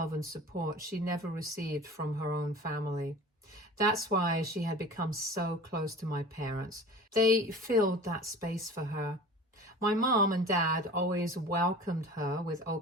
and support she never received from her own family. That's why she had become so close to my parents. They filled that space for her. My mom and dad always welcomed her with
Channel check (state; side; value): normal; both; correlation 0.40